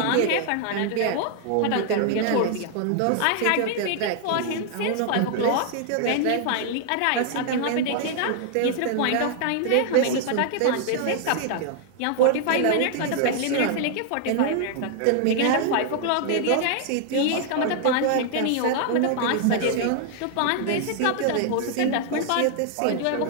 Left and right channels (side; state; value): both; different; correlation 0.00